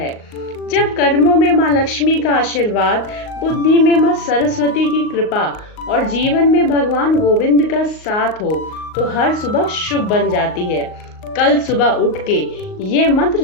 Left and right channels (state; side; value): late; right; 38 ms